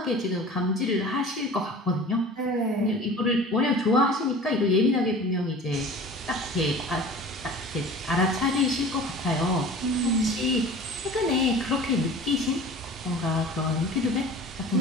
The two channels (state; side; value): normal; both; correlation 0.41